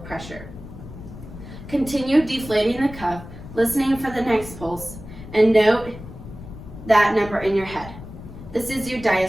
pressure. Continue deflating the cuff, listening for the next pulse, and note that number in your head. This is your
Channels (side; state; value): left; noise; rumble, 14 dB below the sound